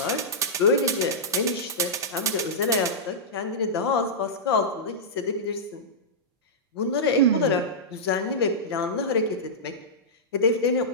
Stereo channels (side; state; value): both; normal; correlation -0.13